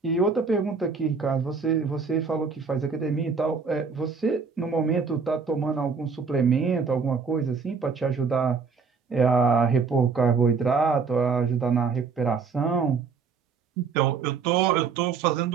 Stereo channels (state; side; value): quieter; left; 5.3 dB